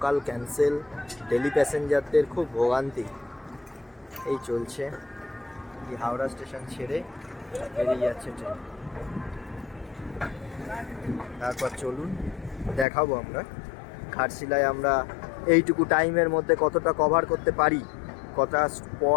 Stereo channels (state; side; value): drops out; right; at 12.9 s